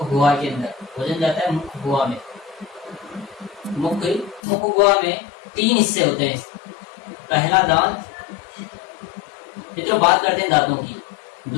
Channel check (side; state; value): right; drops out; at 4.4 s